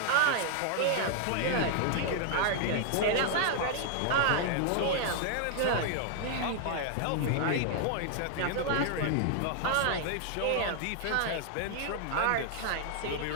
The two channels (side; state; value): both; different; correlation 0.00